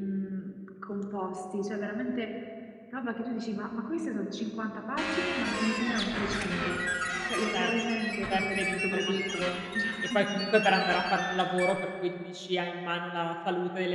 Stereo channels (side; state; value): both; identical; correlation 1.00